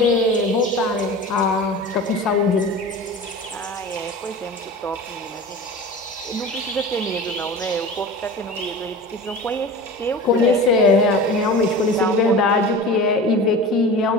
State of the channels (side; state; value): both; normal; correlation 0.34